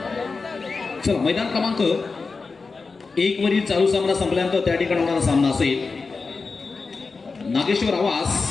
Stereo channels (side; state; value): right; quieter; 4.4 dB